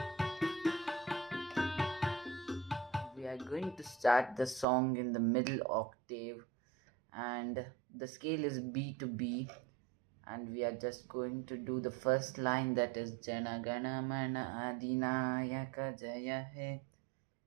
We are going to start the song in the middle octave and the scale is B to B, and we are just going to do the first line, that is Janaganamana Adinayaka Jaya He,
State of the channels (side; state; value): left; drops out; at 4.7 s